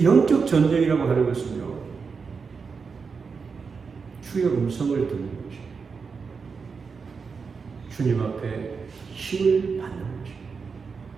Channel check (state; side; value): quieter; left; 5.3 dB